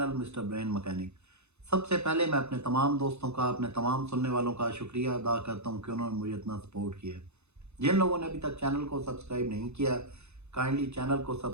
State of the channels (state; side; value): late; left; 0.81 ms